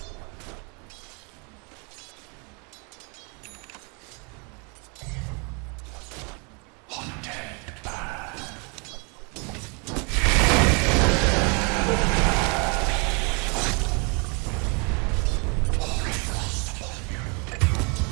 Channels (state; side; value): quieter; left; 33.9 dB